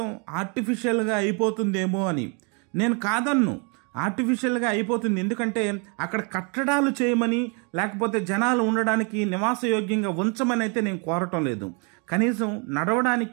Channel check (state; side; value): quieter; left; 34.8 dB